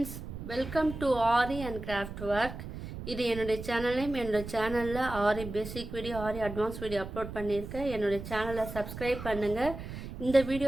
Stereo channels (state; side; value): noise; right; rumble, 9 dB below the sound